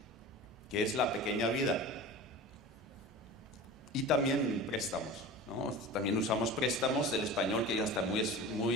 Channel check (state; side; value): normal; both; correlation 0.34